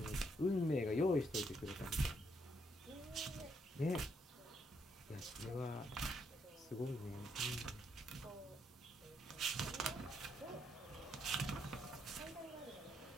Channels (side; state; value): both; normal; correlation 0.75